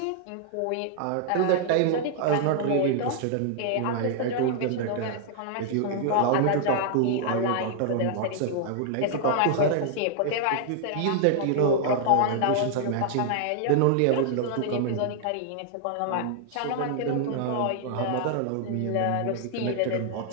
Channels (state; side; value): different; both; correlation 0.00